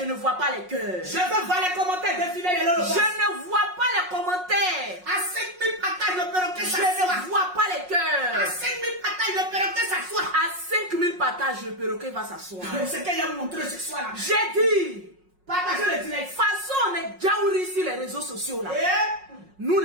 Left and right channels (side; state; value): left; late; 5.5 ms